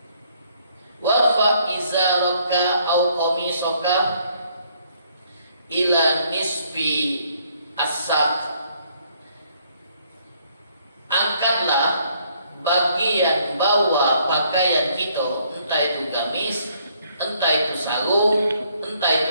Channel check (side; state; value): both; inverted; correlation -0.66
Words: warfa izaraka au qamisaka ila nisfi as-saq. Angkatlah bagian bawah pakaian kita, entah itu gamis, entah itu sarung, entah